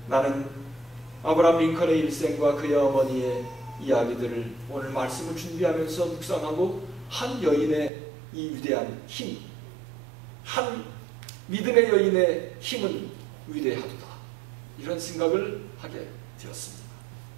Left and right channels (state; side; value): drops out; left; at 7.9 s